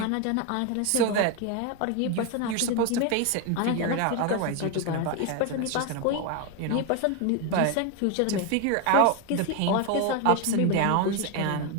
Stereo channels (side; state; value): both; different; correlation 0.02